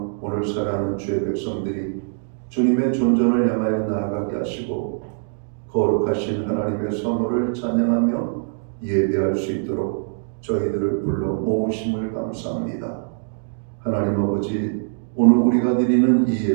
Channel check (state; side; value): silent; left; digital silence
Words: 오늘 살아가는 주의 백성들이 주님의 존전을 향하여 나아가게 하시고 거룩하신 하나님의 성호를 찬양하며 예배할 수 있도록 저희들을 불러 모으심을 감사합니다. 하나님 아버지, 오늘 우리가 드리는 이